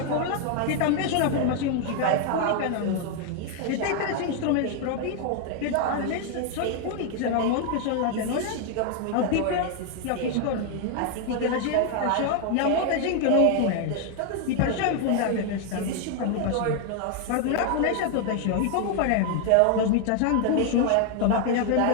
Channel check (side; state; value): both; different; correlation 0.00